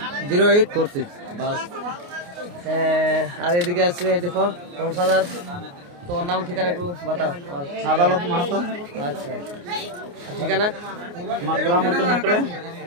বাস, আর এদিকে আছে দেখো সংসাদার, তোমার নাম ঠিকানা একটু বাতাও। আদালত মাহাতো। আচ্ছা, ঠিকানা আমার গ্রাম হচ্ছে নেকড়ে।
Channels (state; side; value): late; left; 29 ms